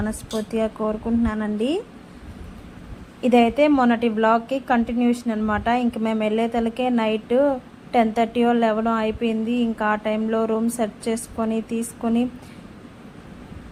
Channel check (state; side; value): identical; both; correlation 1.00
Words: కోరుకుంటున్నానండి. ఇదైతే మొన్నటి వ్లాగ్కి కంటిన్యూషన్ అనమాట. ఇంక మేము వెళ్ళేతలకే నైట్ 10:30 11 అయిపోయింది. ఇంకా ఆ టైంలో రూమ్ సెట్ చేసుకొని తీసుకొని